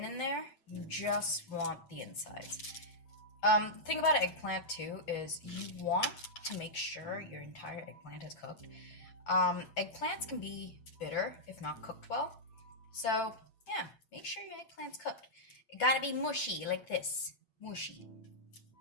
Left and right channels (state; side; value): late; right; 8.9 ms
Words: in there, you just want the insides. The thing about an eggplant too is you want to make sure your entire eggplant is cooked. Eggplants can be bitter if not cooked well. So yeah, make sure your eggplant's cooked. It gotta be mushy like this, mushy,